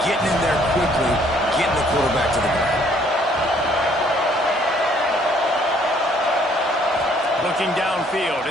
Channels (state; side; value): normal; both; correlation 0.63